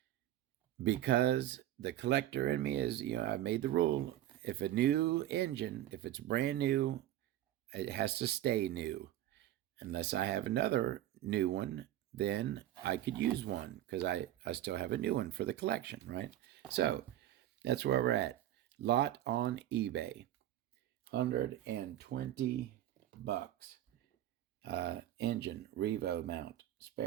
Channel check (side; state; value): left; quieter; 13.1 dB